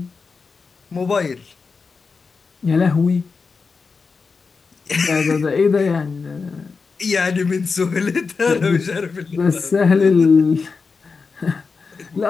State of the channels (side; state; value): right; quieter; 4.8 dB